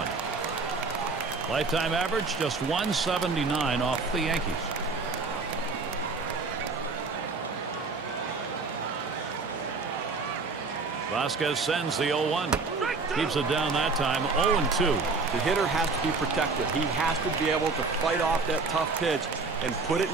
Lifetime average just 179 off the Yankees. Vasquez sends the 0-1. Keeps it down that time. 0-2. The hitter has to be protected. He has to be able to fight off that tough pitch and put it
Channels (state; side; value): quieter; left; 4.1 dB